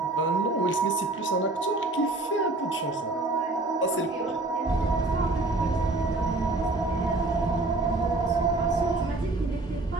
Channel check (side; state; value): left; quieter; 3.0 dB